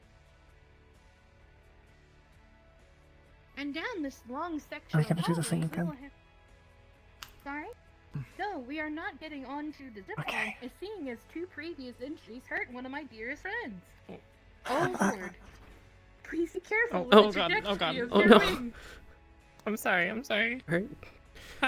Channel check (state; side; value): identical; both; correlation 1.00